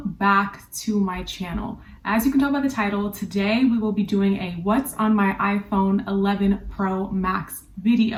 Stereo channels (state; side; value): identical; both; correlation 1.00